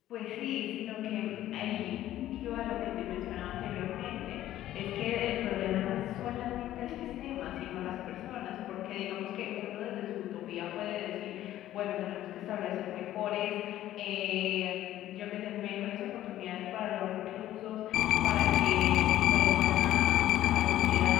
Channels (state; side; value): quieter; right; 13.4 dB